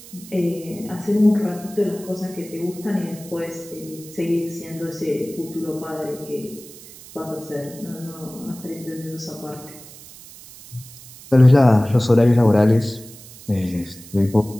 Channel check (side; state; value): right; noise; hiss, 18 dB below the sound